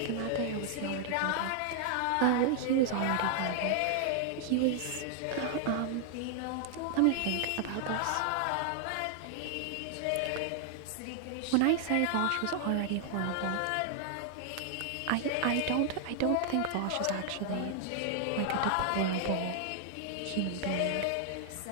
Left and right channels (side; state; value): both; different; correlation 0.00